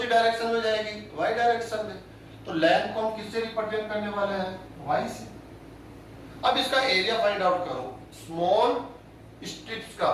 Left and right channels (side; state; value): both; identical; correlation 1.00